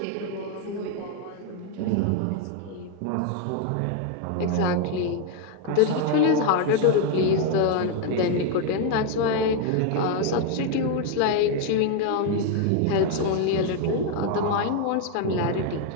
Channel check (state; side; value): different; both; correlation 0.01